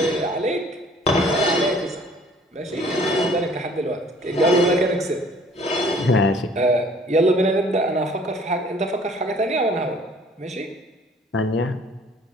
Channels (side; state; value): both; normal; correlation 0.55